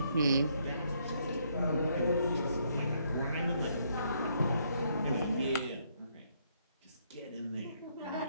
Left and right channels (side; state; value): both; inverted; correlation -0.72